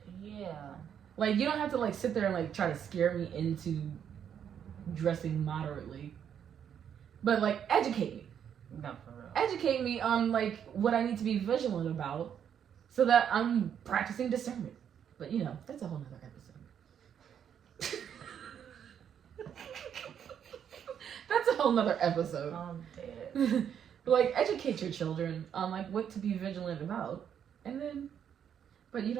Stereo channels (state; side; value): quieter; left; 8.6 dB